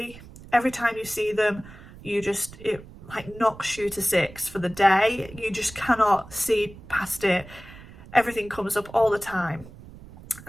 Every time you see them, it like knocks you to six for the day. You just cannot see past it. Everything comes up all the time.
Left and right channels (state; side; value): noise; right; rumble, 18 dB below the sound